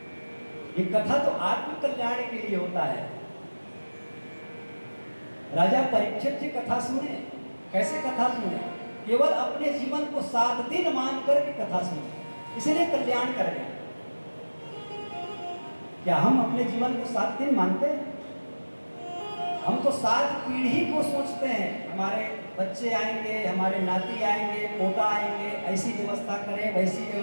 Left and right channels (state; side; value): inverted; both; correlation -1.00